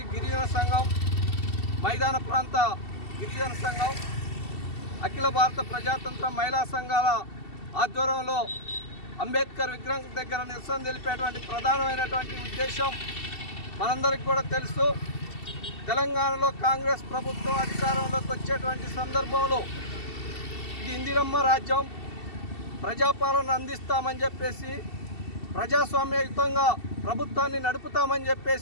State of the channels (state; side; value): late; right; 2.7 ms